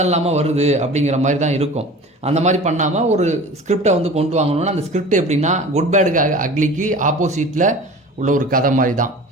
இல்லாமல் வருது அப்படிங்கிற மாதிரி தான் இருக்கும். அந்த மாதிரி பண்ணாமல் ஒரு ஸ்கிரிப்டை வந்து கொண்டு வாங்கணும்னா அந்த ஸ்கிரிப்ட் எப்படின்னா குட் பேடுக்கு அக்லிக்கு ஆப்போசிட்டில் உள்ள ஒரு கதை மாதிரி தான்.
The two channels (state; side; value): normal; both; correlation 0.39